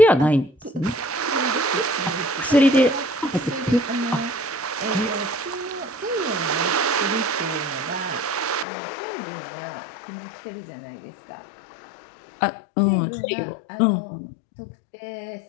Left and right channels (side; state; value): right; drops out; at 8.7 s